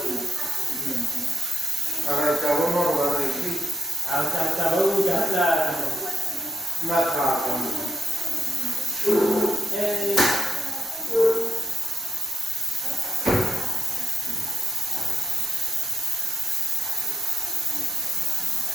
Ahora acabó normal aquí. acabou la Mata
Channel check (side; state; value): both; normal; correlation 0.84